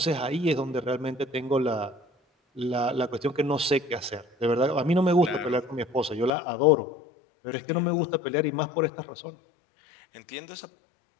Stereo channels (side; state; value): right; drops out; at 6.3 s